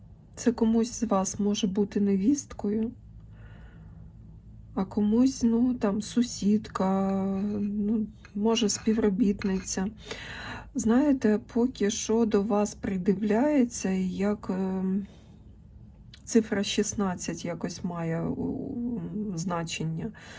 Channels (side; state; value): both; identical; correlation 1.00